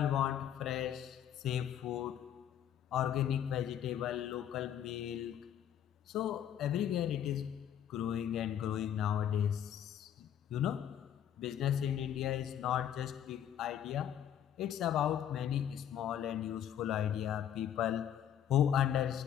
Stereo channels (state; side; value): quieter; right; 10.0 dB